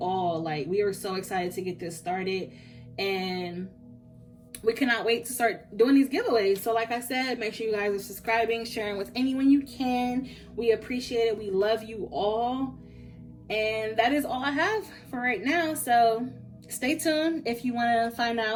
Like, we are so excited to get this started, and we cannot wait to start doing these giveaways. So like I said, make sure you guys are subscribing, sharing with anyone you can. We appreciate it. We love you all. And that is all I have for right now. So stay tuned if you want to find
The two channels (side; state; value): both; identical; correlation 1.00